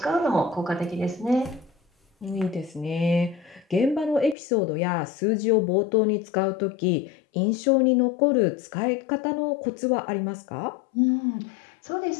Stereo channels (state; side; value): drops out; right; at 4.4 s